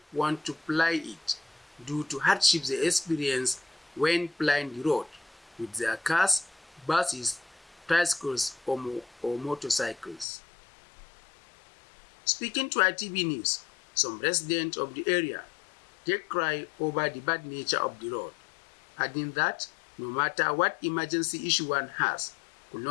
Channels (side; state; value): right; drops out; at 10.2 s